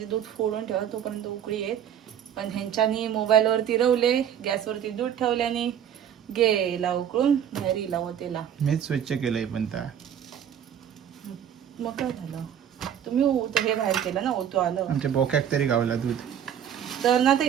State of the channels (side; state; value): left; quieter; 9.2 dB